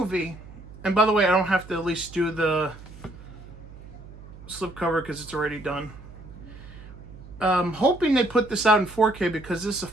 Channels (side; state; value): right; noise; hum, 17 dB below the sound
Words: and by the way, I don't have to at least do the slipcover because it's already done. Hoping they put this out in 4K because this is a